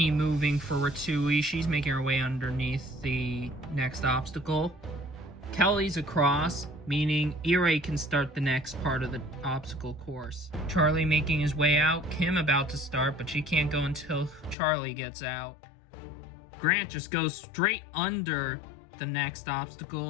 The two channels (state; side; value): drops out; right; at 14.6 s